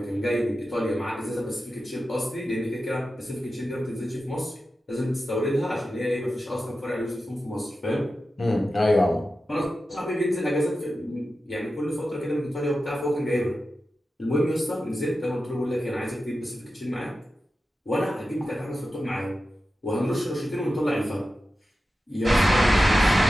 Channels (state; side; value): normal; both; correlation 0.92